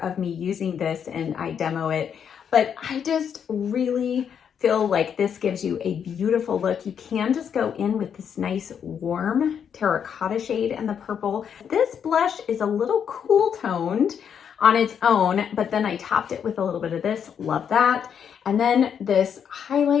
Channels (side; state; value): right; quieter; 7.9 dB